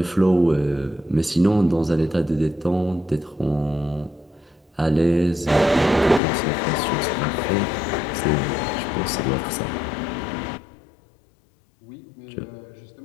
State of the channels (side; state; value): right; drops out; at 6.2 s